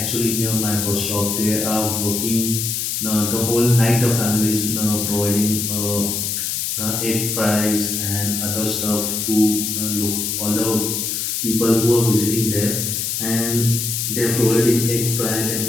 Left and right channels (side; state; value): left; noise; hiss, 1 dB below the sound